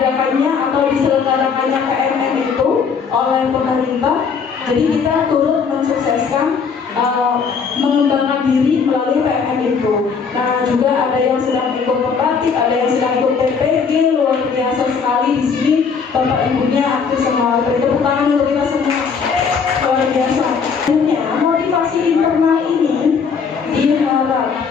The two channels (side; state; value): right; quieter; 5.9 dB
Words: atau diselenggarakannya KMN itu oleh pemerintah, jadi kita turut mensukseskan mengembangkan diri melalui PMN itu. Nah juga ada yang sedang ikut pembatik, ada yang sedang ikut PPG, luar biasa sekali di sini. Bapak ibunya aktif semua, beri tepuk tangan untuk kita semua, luar biasa. Akhirnya motivasi internal ini